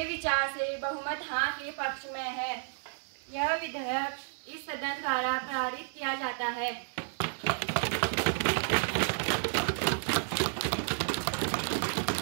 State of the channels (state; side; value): silent; left; digital silence